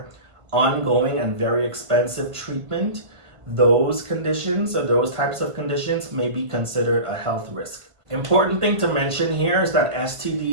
ongoing and very expensive treatment, those conditions or those types of conditions may be considered a health risk. Important thing to mention here is that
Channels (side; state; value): left; late; 1.5 ms